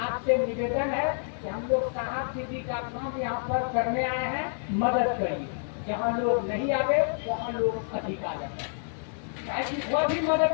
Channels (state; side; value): silent; right; digital silence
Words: निवेदन है कि हम लोग साहब दीदी का काम यहाँ पर करने आए हैं, मदद करिए। जहाँ लोग नहीं आवे वहाँ लोग अधिक आ जाते, वह भी